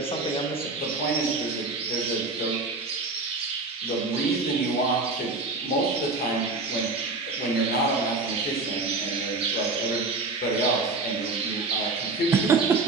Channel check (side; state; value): left; quieter; 3.6 dB